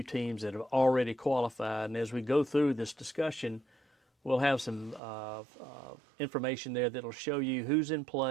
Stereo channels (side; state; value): left; drops out; at 5.0 s